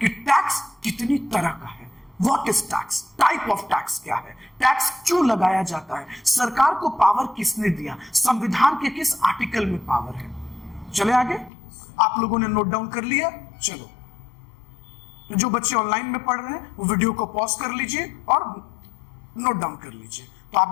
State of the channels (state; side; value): drops out; right; at 11.5 s